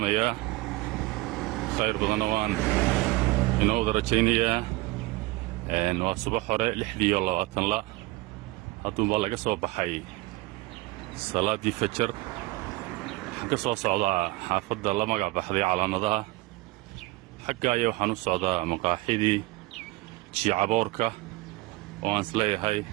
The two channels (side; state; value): left; quieter; 20.8 dB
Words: يا خير بضنوان إنه درجينيا إنه صباح وراء لحدي والله وطن لا هاتون بالله قصوا بحي صلاة دي فجر قصوا صعدا حافظ الله مقع بحذي على نضها حقا يوحنو صعدا مقاحيدي شي عبوركا وان سلي هاي